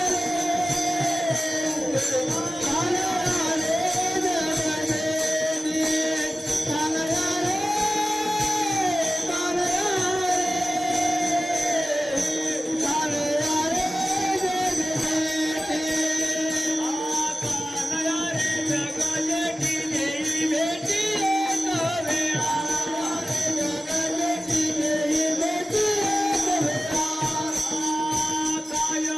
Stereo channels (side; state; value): both; normal; correlation 0.96